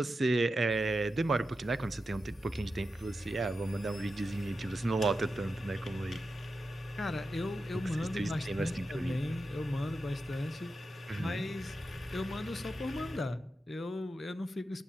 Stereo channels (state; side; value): normal; both; correlation 0.90